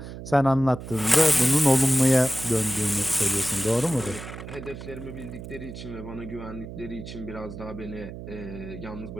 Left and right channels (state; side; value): noise; right; hum, 11 dB below the sound